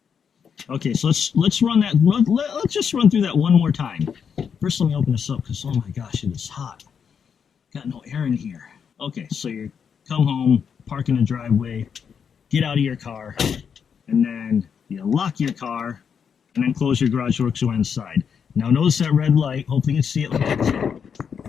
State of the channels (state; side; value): quieter; right; 7.0 dB